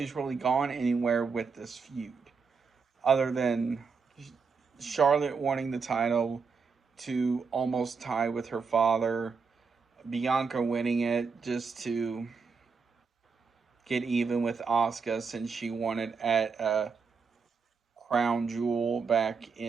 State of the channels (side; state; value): left; quieter; 5.2 dB